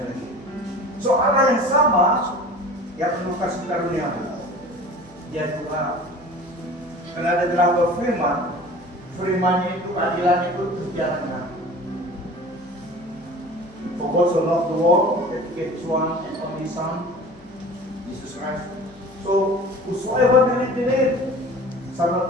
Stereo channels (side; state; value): left; noise; hum, 27 dB below the sound